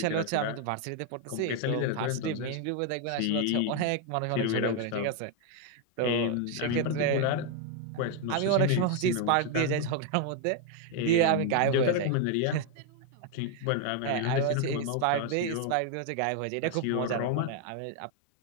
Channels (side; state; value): both; different; correlation 0.01